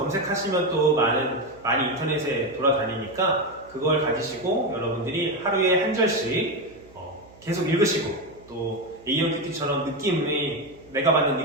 또 많이 인터넷에 돌아다니니까 그걸 가지시고 여러분들이 하루에 한 절씩 계속 읽으시고 또 A형 큐티처럼 내가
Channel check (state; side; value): noise; right; hum, 25 dB below the sound